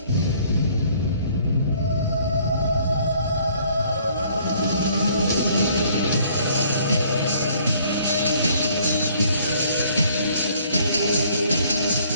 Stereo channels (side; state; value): both; inverted; correlation -0.60